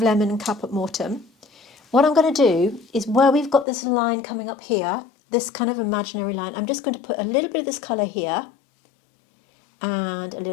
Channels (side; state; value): right; drops out; at 3.7 s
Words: lemon and Caput Mortem. What I'm going to do is where we've got this line coming up here, this kind of imaginary line, I'm just going to put a little bit of this colour here and a